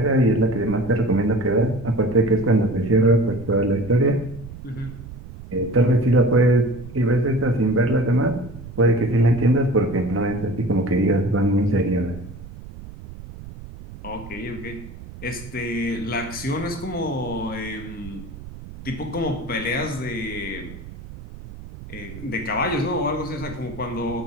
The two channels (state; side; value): noise; right; rumble, 14 dB below the sound